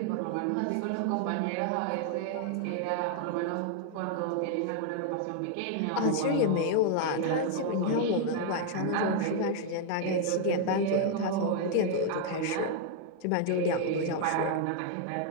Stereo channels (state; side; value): different; both; correlation 0.00